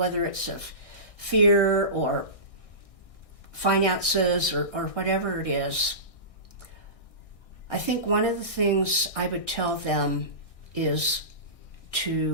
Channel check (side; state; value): right; late; 1.6 ms